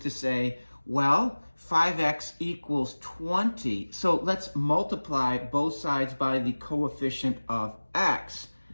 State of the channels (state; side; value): inverted; both; correlation -1.00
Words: say, well, 5x equals 20. So let's multiply both sides by the coefficient of x.